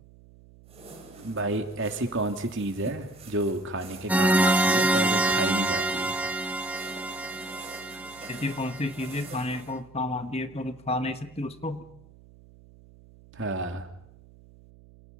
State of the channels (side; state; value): right; noise; hum, 23 dB below the sound